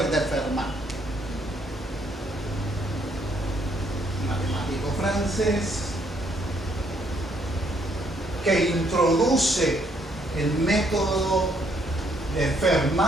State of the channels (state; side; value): normal; both; correlation 0.70